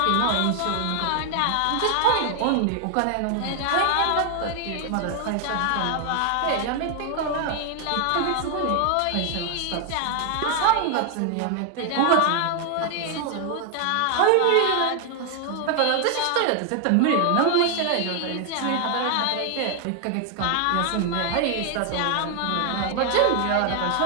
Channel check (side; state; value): both; different; correlation 0.00